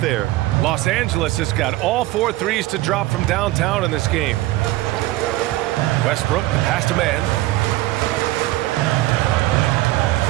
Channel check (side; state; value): left; quieter; 17.5 dB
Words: Los Angeles has got all 4 threes to drop from downtown in this game. Westbrook, the pass to Mann.